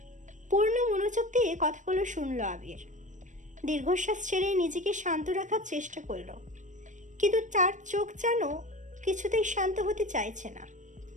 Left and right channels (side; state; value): left; late; 0.36 ms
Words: পূর্ণ মনোযোগ দিয়ে কথাগুলো শুনলো আবির। দীর্ঘশ্বাস ছেড়ে নিজেকে শান্ত রাখার চেষ্টা করলো, কিন্তু তার চোখ যেন কিছুতেই শান্ত হতে চাইছে না।